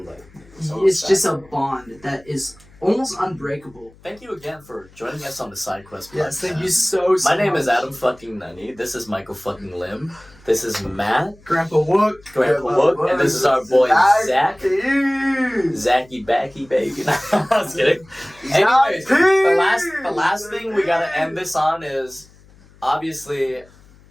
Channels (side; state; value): left; noise; hum, 26 dB below the sound